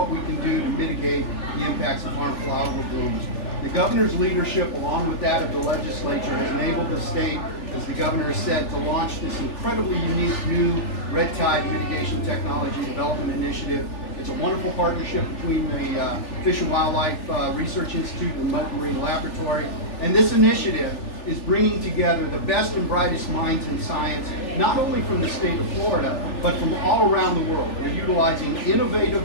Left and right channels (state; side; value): late; right; 3.4 ms